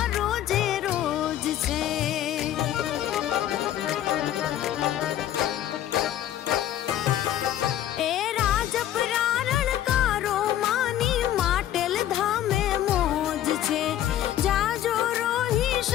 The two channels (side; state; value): right; quieter; 12.0 dB